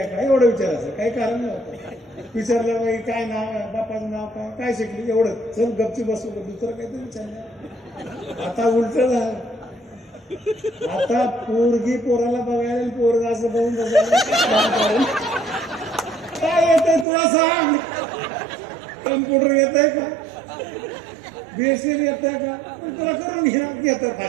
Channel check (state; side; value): drops out; left; at 17.1 s